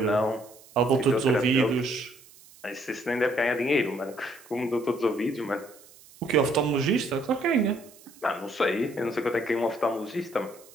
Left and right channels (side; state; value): right; noise; hiss, 24 dB below the sound